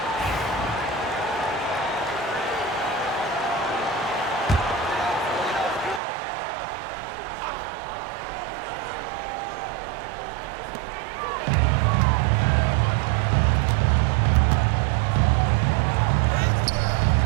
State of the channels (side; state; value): left; drops out; at 6.0 s